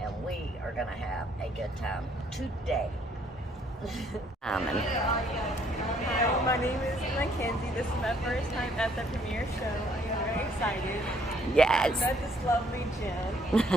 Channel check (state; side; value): normal; both; correlation 0.65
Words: we are going to have a good time today. Diamond. Hi, my name is Mackenzie. This is my first time at the premiere show. I'm very excited. Yes. I met this lovely